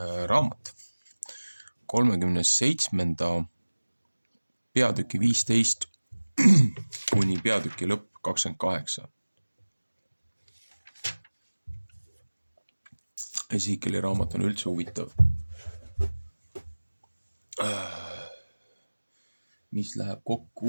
raamat 37. peatüki 15 kuni peatüki lõpp 28. Ezekieli raamat on üldse huvitav. Mis läheb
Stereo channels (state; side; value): inverted; both; correlation -1.00